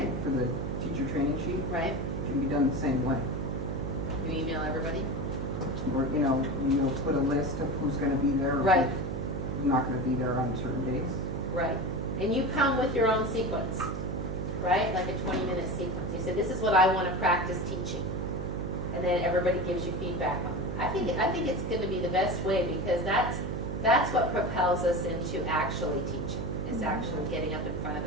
for the teacher training sheet. right? It can be done the same way. You email everybody? Or, you'll put a list of who's gonna be there. Or Right. who's not gonna be there on certain days. Right. And you come with your own sequence, right? Like a 20-minute sequence. You say, this is what I want to practice teaching. And then everybody gives you feedback on it. I think it's going to be the best way, because that's what propels us into actually teaching, is actually getting up in front of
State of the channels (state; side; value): noise; right; hum, 3 dB below the sound